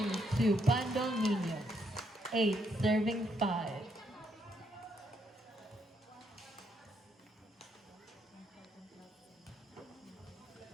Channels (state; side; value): normal; both; correlation 0.75